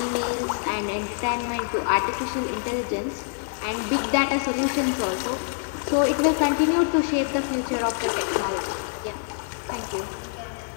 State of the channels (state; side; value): silent; right; 58 dB below the other